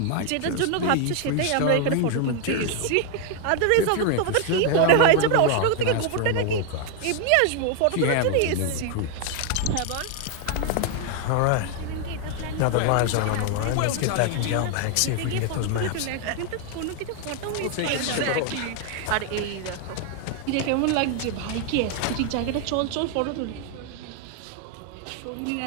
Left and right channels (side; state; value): both; different; correlation 0.01